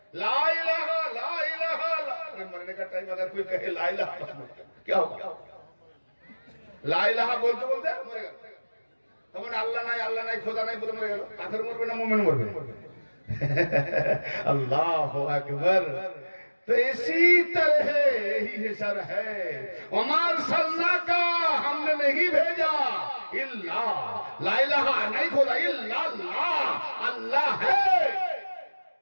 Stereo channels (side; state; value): both; inverted; correlation -1.00